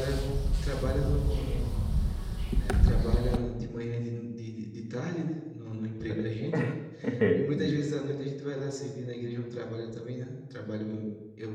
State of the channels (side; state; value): both; identical; correlation 1.00